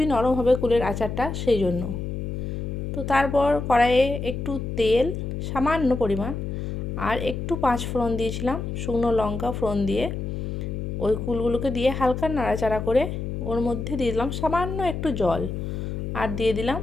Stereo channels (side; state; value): left; noise; hum, 4 dB below the sound